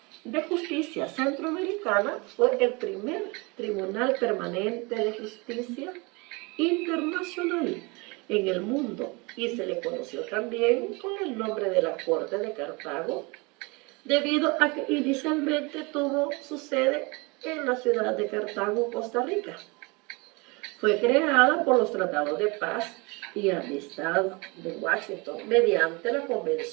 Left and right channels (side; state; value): left; quieter; 27.4 dB